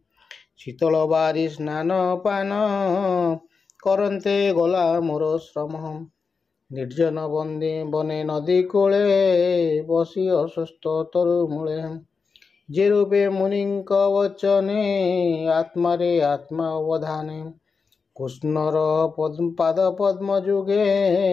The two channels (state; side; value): quieter; right; 5.0 dB